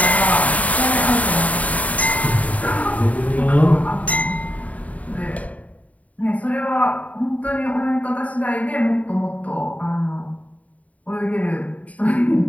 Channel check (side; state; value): right; late; 0.070 ms